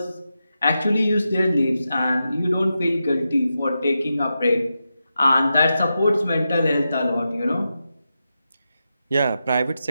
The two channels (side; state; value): both; inverted; correlation -0.89